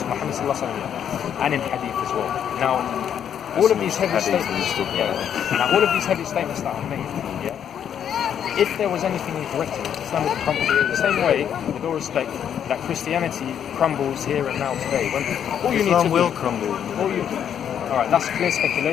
Sallallahu Alaihi Wasallam, and in Hadith as well. Now, all of these heavy statements, all of these heavy statements that are made, if there was anything incorrect in it, Islam would crumble. The same way, with all respect, that Christianity crumbles here and now today. When all you Islam need to will crumble. Alright, that's clear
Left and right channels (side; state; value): right; quieter; 9.0 dB